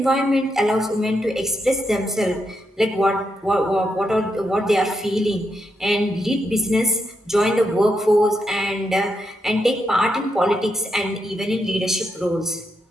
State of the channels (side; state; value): both; normal; correlation 0.82